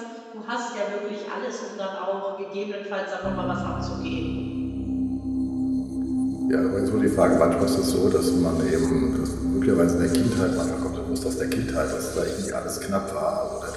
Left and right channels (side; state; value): both; identical; correlation 1.00